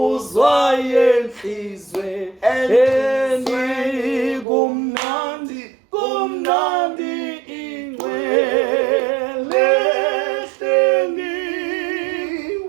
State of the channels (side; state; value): left; drops out; at 4.5 s